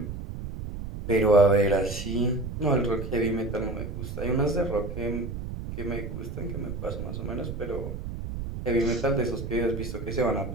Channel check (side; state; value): right; noise; rumble, 7 dB below the sound